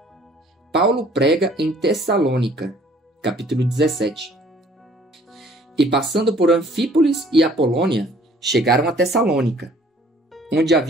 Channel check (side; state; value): both; normal; correlation 0.57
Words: Paulo prega em Tessalônica, capítulo 17. E passando por Anfípolis e Apolônia, chegaram a Tessalônica, onde